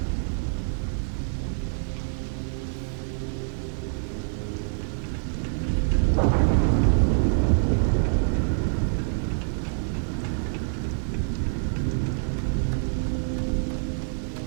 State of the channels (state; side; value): silent; left; 55 dB below the other